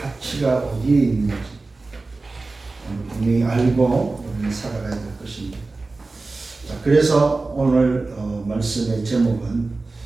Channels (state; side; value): quieter; left; 3.5 dB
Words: 어디에 있는지 분명히 알고 우리는 살아가야 될 것입니다. 자, 그래서 오늘 말씀의 제목은